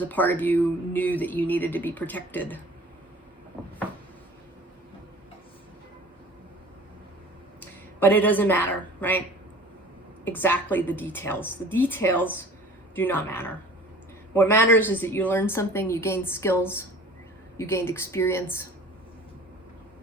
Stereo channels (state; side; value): normal; both; correlation 0.45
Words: a part of you knew that you needed to be protected. But it doesn't matter, right? Exactly the details. The details do not matter. What matters is that you learn something, you gain skills, You gained experience.